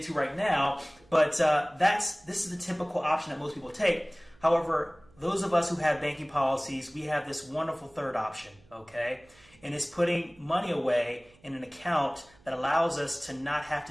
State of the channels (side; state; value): right; noise; hum, 29 dB below the sound